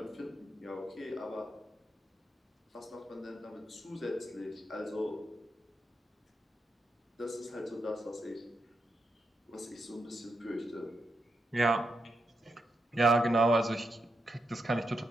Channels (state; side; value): normal; both; correlation 0.84